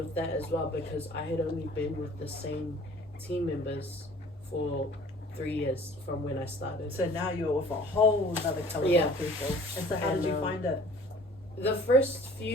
that as well, because I had only been with the same team members for 3 years from when I started. So now you're with a whole other caliber of people. And so how did you find it? The first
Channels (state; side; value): normal; both; correlation 0.50